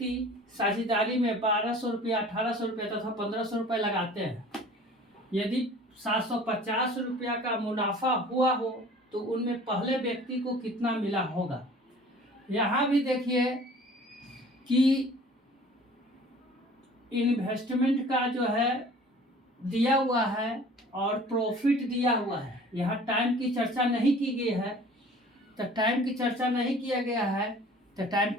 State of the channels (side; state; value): both; normal; correlation 0.47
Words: साझेदारी में 1,200 रुपया, 1,800 रुपया तथा 1,500 रुपया लगाते हैं। यदि 750 रुपया का मुनाफा हुआ हो तो उनमें पहले व्यक्ति को कितना मिला होगा। यहाँ भी देखिए कि इन्वेस्टमेंट का जो है दिया हुआ है और प्रॉफिट दिया हुआ है। यहाँ टाइम की चर्चा नहीं की गई है, तो टाइम की चर्चा नहीं किया गया है तो टाइम